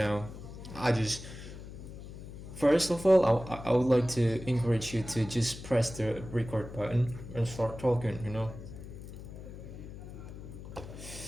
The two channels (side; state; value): left; noise; hum, 12 dB below the sound